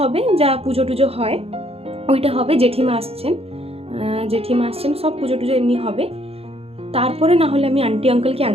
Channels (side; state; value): left; late; 0.29 ms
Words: হবে, যা পুজো টুজো হয় ওইটা হবে। জেঠিমা আসছেন, সব পুজো টুজো এমনি হবে। তারপরে না হলে আমি আন্টি আঙ্কেলকে